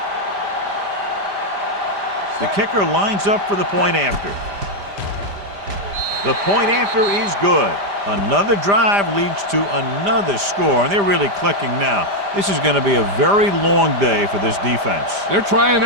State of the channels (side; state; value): left; late; 5.0 ms